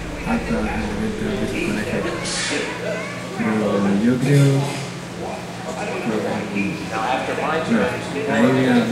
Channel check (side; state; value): both; identical; correlation 1.00